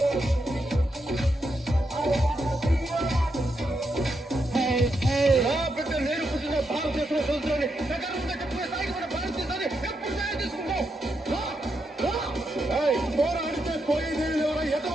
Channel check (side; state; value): both; normal; correlation 0.83